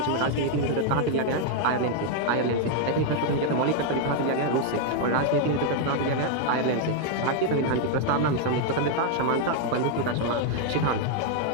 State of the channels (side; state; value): both; different; correlation 0.00